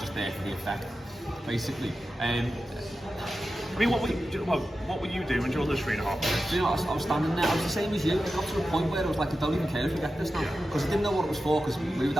there for the effect, basically. I mean, what were you doing during those 3.5 minutes? You know, I was standing there. I was the same as you. It got to a point where I was like, I don't even care if we get this now, because I didn't know what it was for. Because we were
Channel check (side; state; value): both; normal; correlation 0.92